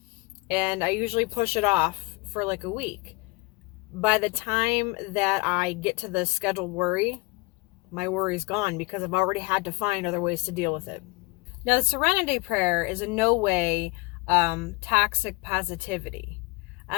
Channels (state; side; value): quieter; right; 24.3 dB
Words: And I usually push it off for a week. By the time that I get to the scheduled worry, my worry's gone because I've already had to find other ways to deal with it. Now, the Serenity Prayer is in no way toxic positivity.